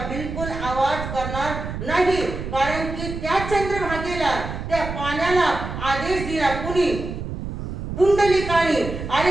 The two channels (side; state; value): right; noise; rumble, 7 dB below the sound